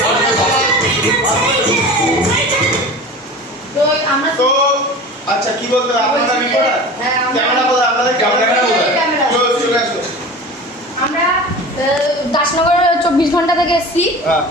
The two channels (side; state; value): both; normal; correlation 0.36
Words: আচ্ছা কি বলতে আপনারা রিপোর্টার? হ্যাঁ, ক্যামেরা বলে আপনাদের ক্যামেরা চলে আসো। আমরা দাসনগর 24 ঘন্টা থেকে এসেছি।